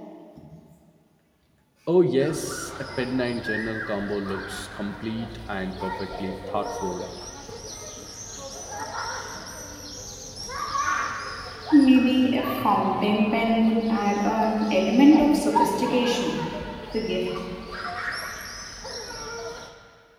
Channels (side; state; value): both; identical; correlation 1.00